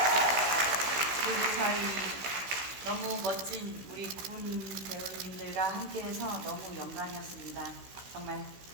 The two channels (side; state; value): left; late; 16 ms